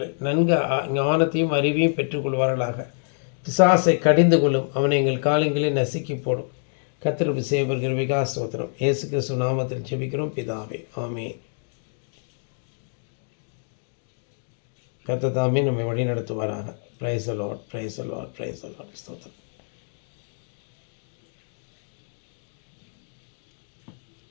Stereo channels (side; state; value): right; silent; digital silence